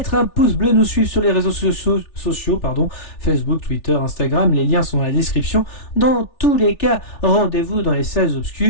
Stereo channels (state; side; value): late; right; 3.4 ms